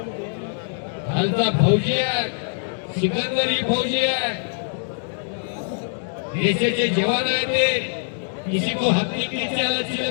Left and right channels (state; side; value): silent; right; digital silence